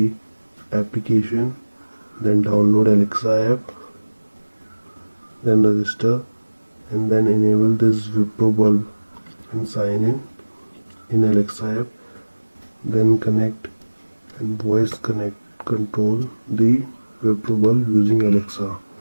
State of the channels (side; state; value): both; inverted; correlation -1.00